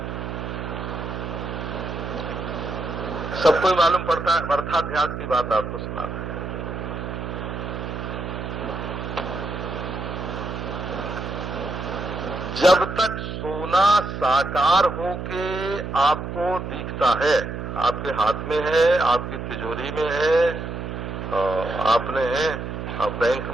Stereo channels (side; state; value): right; noise; hum, 6 dB below the sound